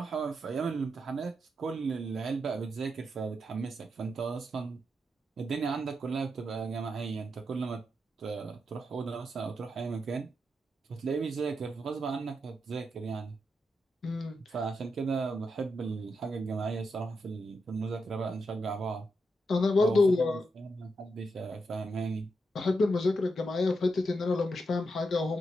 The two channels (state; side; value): normal; both; correlation 0.84